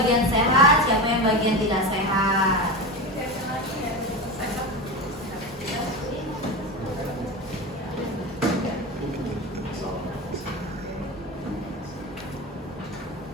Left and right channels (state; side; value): normal; both; correlation 0.22